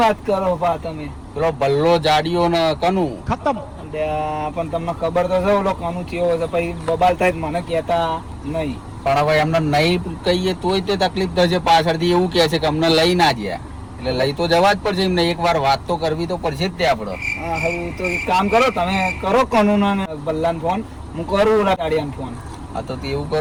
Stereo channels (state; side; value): identical; both; correlation 1.00